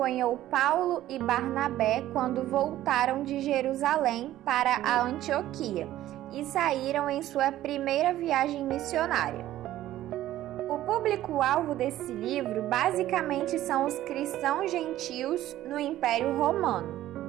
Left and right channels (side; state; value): left; quieter; 13.9 dB